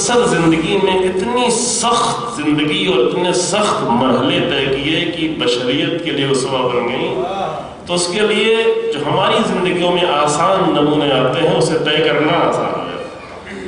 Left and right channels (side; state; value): both; identical; correlation 1.00